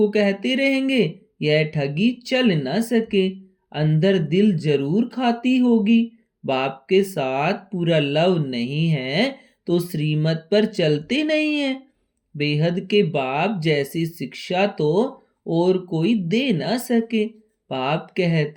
कहते रहेंगे यह ठगी चल न सके। अंदर दिल जरूर खाती होगी। बाप के साथ पूरा लव नहीं है तो श्रीमत पर चलते नहीं है। बेहद के बाप जैसी शिक्षा तो और कोई दे ना सके। बाप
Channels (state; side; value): identical; both; correlation 1.00